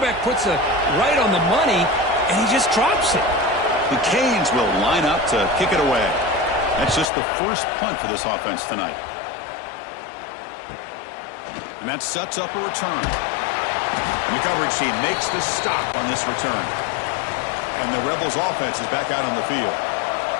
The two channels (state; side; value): drops out; right; at 7.1 s